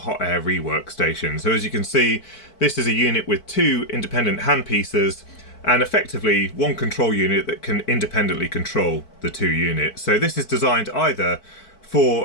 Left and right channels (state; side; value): late; right; 4.5 ms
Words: air rework station. So as you can see, this is a unit with two independent handpieces and effectively one control unit that can independently control the two units. So this is designed either